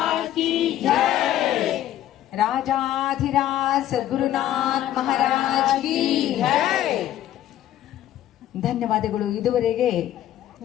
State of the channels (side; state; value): right; quieter; 12.4 dB